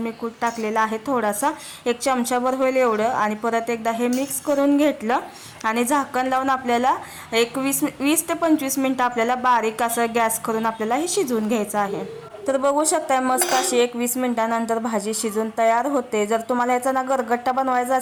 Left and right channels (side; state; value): both; identical; correlation 1.00